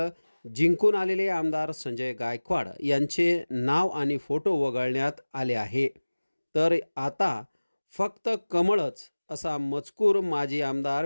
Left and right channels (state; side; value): inverted; both; correlation -1.00